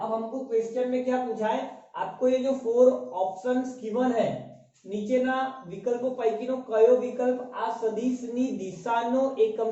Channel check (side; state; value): both; identical; correlation 1.00